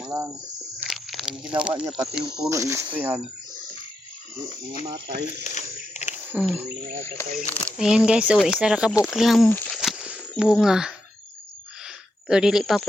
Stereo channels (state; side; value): normal; both; correlation 0.84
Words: mo lang. Ang ginawa niya pati yung puno istoryahan. Hindi matay. Ayan guys, oh, isa ra ka lang bunga. Pero dili pa